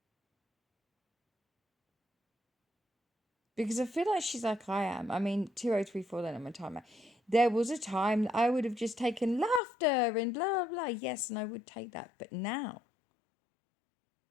Because I feel like she's like I am. I mean, 2034 then on my timer. There was a time that I would have just taken laughter and blah, blah, blah. Yes, and I would take that. But now,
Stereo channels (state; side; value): drops out; right; at 9.6 s